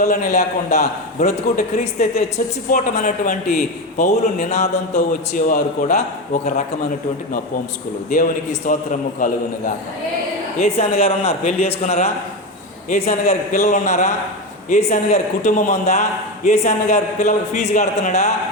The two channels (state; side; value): normal; both; correlation 0.17